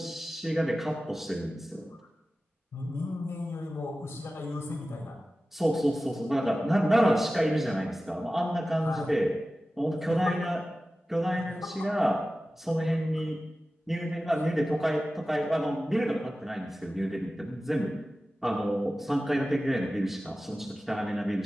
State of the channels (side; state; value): both; normal; correlation 0.95